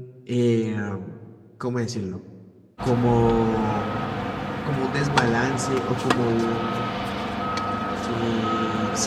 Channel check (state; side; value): identical; both; correlation 1.00